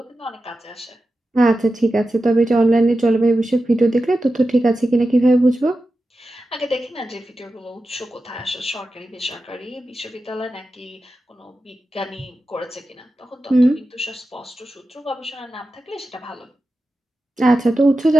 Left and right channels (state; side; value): normal; both; correlation 0.92